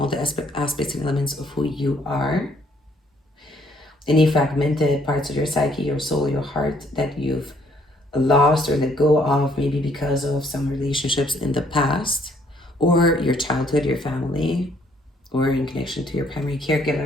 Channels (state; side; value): normal; both; correlation 0.66